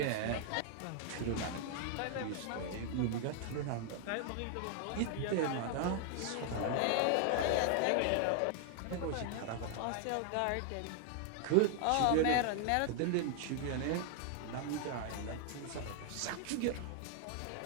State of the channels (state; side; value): different; both; correlation 0.00